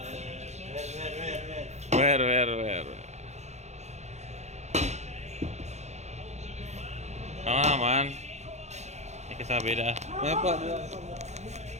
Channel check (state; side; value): late; left; 0.33 ms